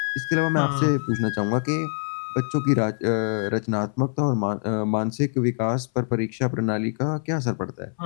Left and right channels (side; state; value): right; silent; 62 dB below the other